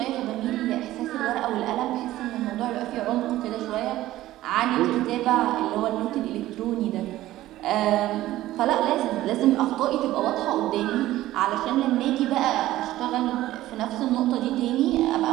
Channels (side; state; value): left; quieter; 15.2 dB